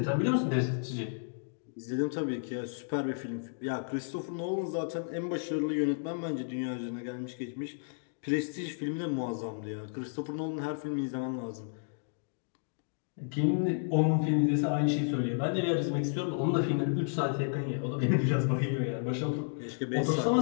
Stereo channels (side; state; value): right; silent; digital silence